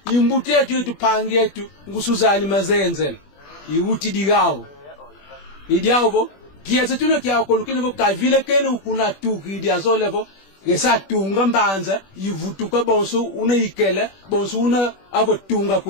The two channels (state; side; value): late; right; 21 ms